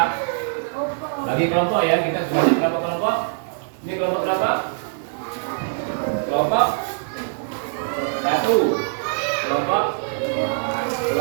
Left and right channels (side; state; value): left; silent; 56 dB below the other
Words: bagi kelompok ya, kita sudah berapa kelompok? Ini kelompok berapa? Kelompok 1, kelompok